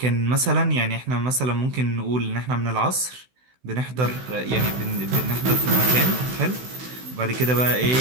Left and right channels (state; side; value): late; left; 16 ms